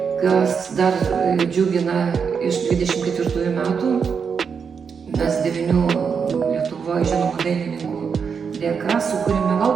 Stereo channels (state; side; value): quieter; left; 6.2 dB